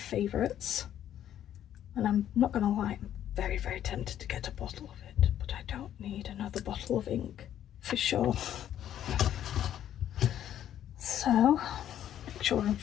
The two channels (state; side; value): quieter; right; 10.9 dB